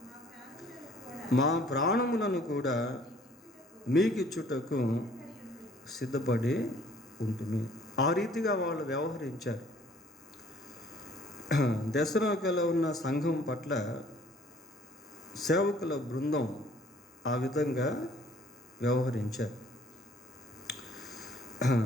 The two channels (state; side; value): normal; both; correlation 0.57